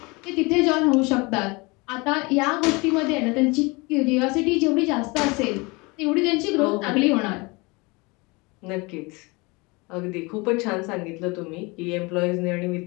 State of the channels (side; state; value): right; quieter; 26.2 dB